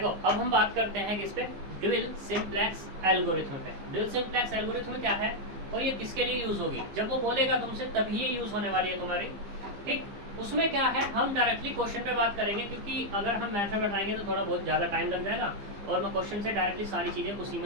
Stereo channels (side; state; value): left; late; 15 ms